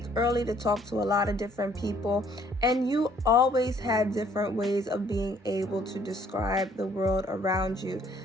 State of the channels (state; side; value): normal; both; correlation 0.62